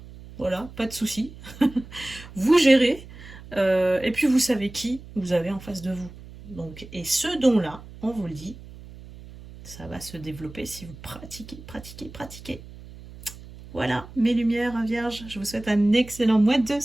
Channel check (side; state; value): right; noise; hum, 17 dB below the sound